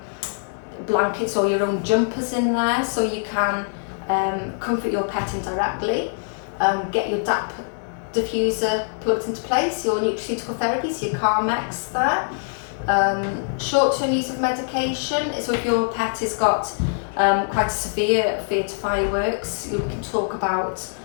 blankets or your own jumpers in there so you can comfort your pet indirectly. Get your DAP diffuser plugged into place, your nutraceutical therapy, so your Carmex there. Short-term use of medication, so if your pet has got quite a severe fear to fireworks, we can talk about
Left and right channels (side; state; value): right; silent; 63 dB below the other